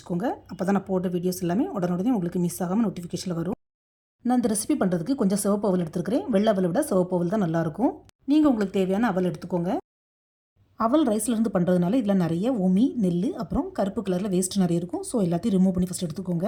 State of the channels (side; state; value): both; identical; correlation 1.00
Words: அப்போ தான் நான் போட்ட வீடியோஸ் எல்லாமே உடனே உங்களுக்கு மிஸ் ஆகாமல் நோட்டிஃபிகேஷனில் வரும். நான் இந்த ரெசிபி பண்ணுறதுக்கு கொஞ்சம் சிவப்பு அவல் எடுத்துருக்கிறேன். வெள்ளை அவலை விட சிவப்பு அவல் தான் நல்லாயிருக்கும். நீங்கள் உங்களுக்கு தேவையான அவல் எடுத்துக்கோங்க. அவல் ரைஸ்லேருந்து பண்ணுறதுனால இதில் நிறைய உமி, நெல், அப்புறம் கருப்பு கலரில் வேஸ்ட் நிறைய இருக்கும். ஸோ எல்லாத்தையும் ரிமூவ் பண்ணி ஃபஸ்ட் எடுத்துக்கோங்க.